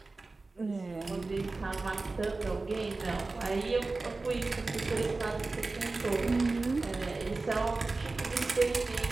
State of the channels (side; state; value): left; quieter; 3.5 dB